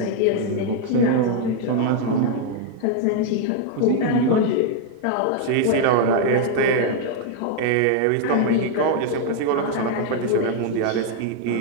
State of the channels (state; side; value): different; both; correlation 0.00